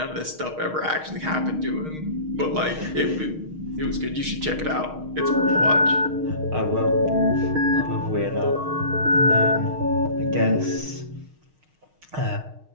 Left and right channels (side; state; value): left; late; 6.4 ms